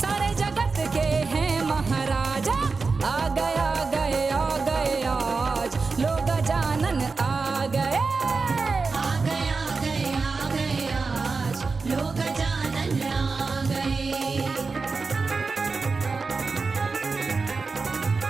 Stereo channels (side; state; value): left; quieter; 4.3 dB